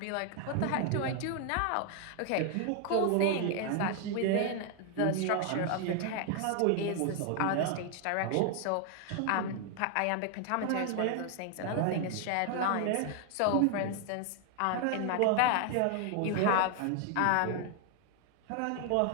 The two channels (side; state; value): both; different; correlation 0.00